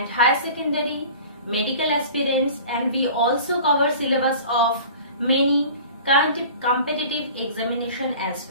higher secondary, medical aspirants, and we also cover syllabus of many competitive examination as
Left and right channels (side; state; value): both; inverted; correlation -0.42